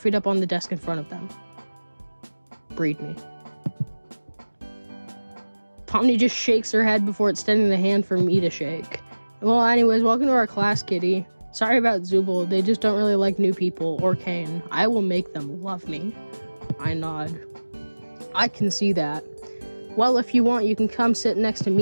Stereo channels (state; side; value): inverted; both; correlation -1.00